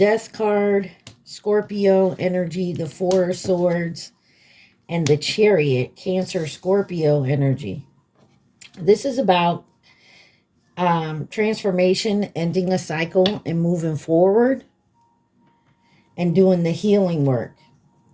card, Scorpio energy, the Four of Swords, and the Chariot, Cancer, Scorpio energy. This is about transformation, ending a cycle and moving forward and doing the healing work,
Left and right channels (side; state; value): both; identical; correlation 1.00